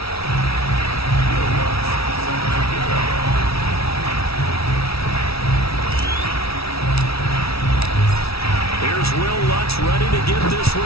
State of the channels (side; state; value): right; late; 0.76 ms